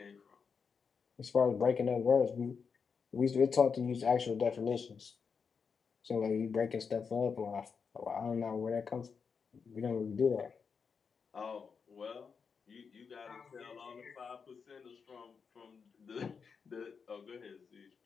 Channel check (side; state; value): right; quieter; 5.8 dB